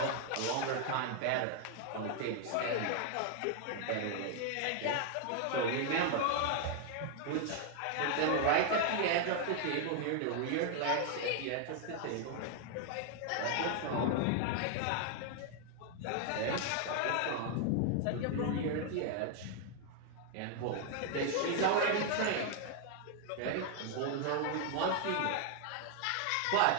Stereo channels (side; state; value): both; different; correlation 0.00